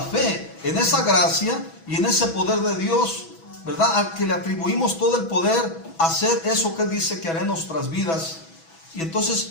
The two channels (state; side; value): late; right; 6.1 ms